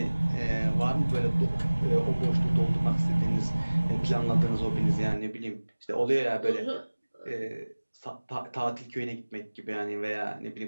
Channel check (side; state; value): both; inverted; correlation -1.00